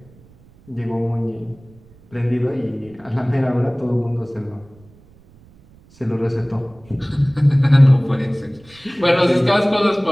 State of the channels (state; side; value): noise; right; rumble, 27 dB below the sound